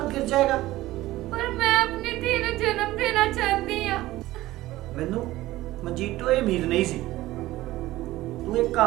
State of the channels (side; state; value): left; quieter; 16.8 dB